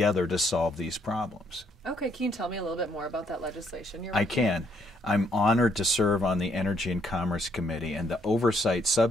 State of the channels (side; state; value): both; normal; correlation 0.70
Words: to solve these problems. Okay, can you tell me a little bit more about that legislation you're I can. I'm honored to serve on the Energy and Commerce Committee, and the Oversight